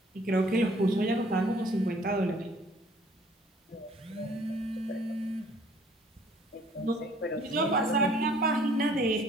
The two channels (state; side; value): normal; both; correlation 0.57